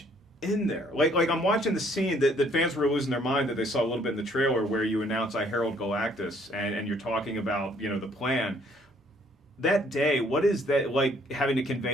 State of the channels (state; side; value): normal; both; correlation 0.63